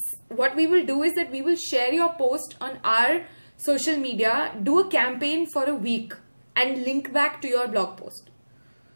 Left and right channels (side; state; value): both; inverted; correlation -1.00